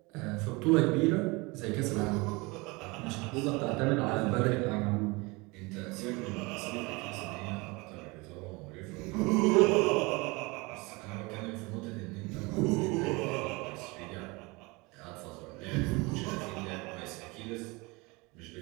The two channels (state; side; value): quieter; left; 25.4 dB